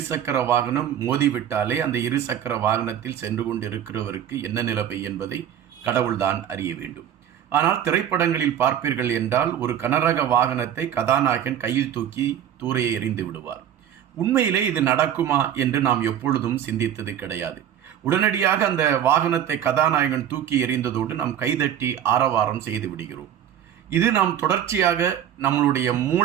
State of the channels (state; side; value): quieter; left; 10.0 dB